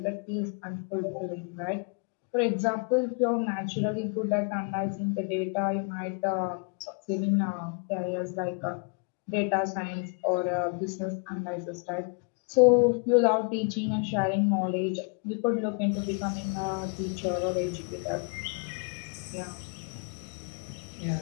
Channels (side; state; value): right; quieter; 38.2 dB